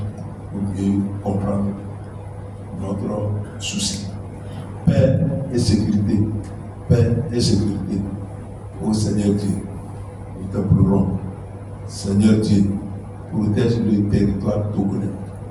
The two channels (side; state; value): both; identical; correlation 1.00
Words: pour mieux comprendre notre souci. Paix et sécurité. Paix et sécurité. Ô Seigneur Dieu, nous t'implorons. Seigneur Dieu, protège le territoire togolais.